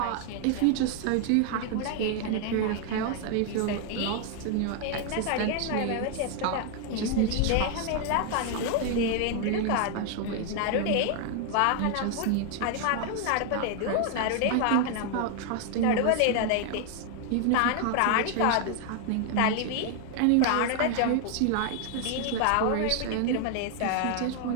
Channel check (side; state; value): both; different; correlation 0.00